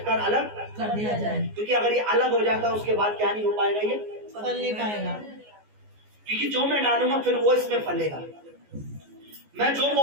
कर अलग कर दिया जाए। क्योंकि अगर ये अलग हो जाता है उसके बाद क्या नहीं हो पाएगा, ये फल नहीं पाएगा। क्योंकि जो मैं डालूंगा फिर वो इसमें फलेगा, मैं जो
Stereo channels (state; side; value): late; left; 14 ms